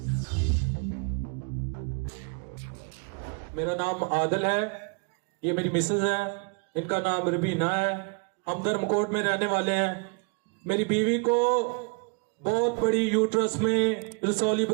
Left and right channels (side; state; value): left; quieter; 34.7 dB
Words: नाम आदिल है, ये मेरी मिसेज है, इनका नाम रबीना है। हम धर्मकोट में रहने वाले हैं। मेरी बीवी को बहुत बड़ी यूट्रस में रसौली